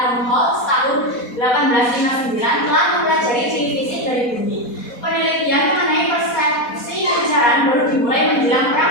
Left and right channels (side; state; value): right; late; 4.1 ms